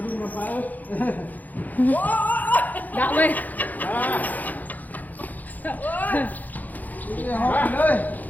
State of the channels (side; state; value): right; late; 0.082 ms